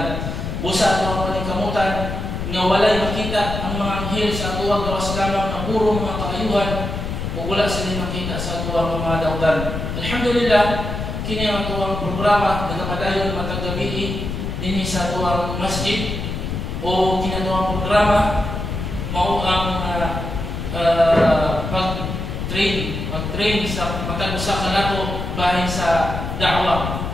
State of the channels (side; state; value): left; noise; rumble, 4 dB below the sound